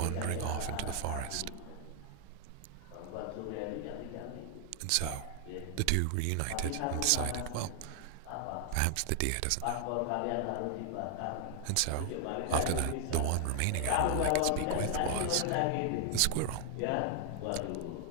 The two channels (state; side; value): different; both; correlation 0.00